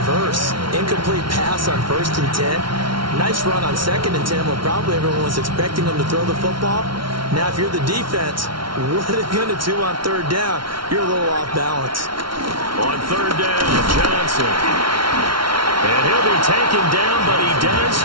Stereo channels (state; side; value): late; left; 0.74 ms